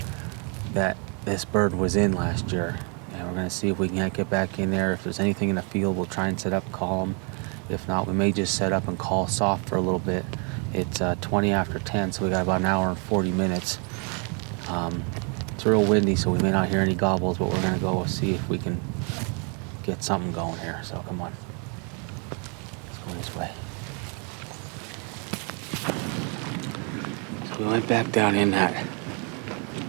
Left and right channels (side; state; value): left; quieter; 36.6 dB